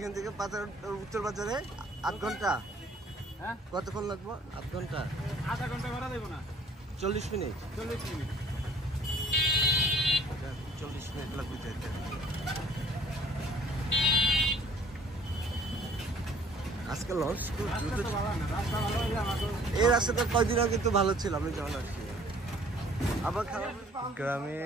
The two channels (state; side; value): normal; both; correlation 0.55